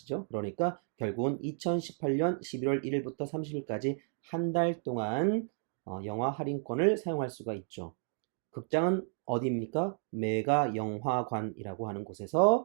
그러니까 결국은 2018년 11월 1일부터 30일까지 한 달 동안 영화 할인권을 사용할 수가 있죠. 극장은 어디입니까? 메가 영화관이라고 하는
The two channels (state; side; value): silent; left; 56 dB below the other